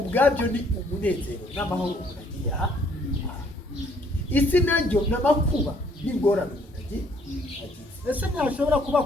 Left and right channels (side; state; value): both; normal; correlation 0.64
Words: ni umunezero n'amahoro umuntu agiye aha isi naryo n'amakuba n'ingorane umuntu agiye ese ntashobora kuba